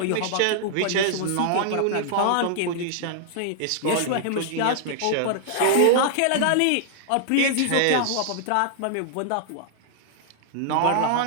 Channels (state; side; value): different; both; correlation -0.01